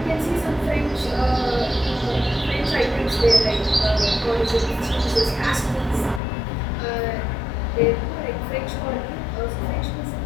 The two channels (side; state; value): right; drops out; at 6.2 s